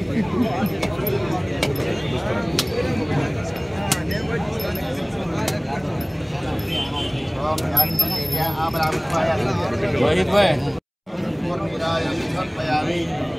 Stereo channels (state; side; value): identical; both; correlation 1.00